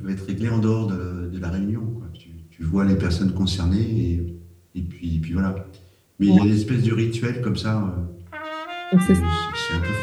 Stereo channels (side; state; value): both; identical; correlation 1.00